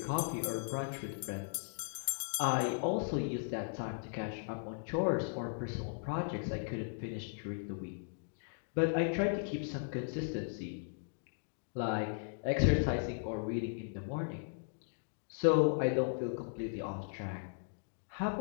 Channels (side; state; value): right; silent; digital silence